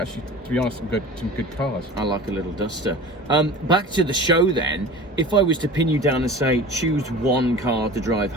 to be honest, some good cars. I like a little Duster. Back to the show then. If I was to pin you down and say choose one car to drive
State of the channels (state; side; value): normal; both; correlation 0.38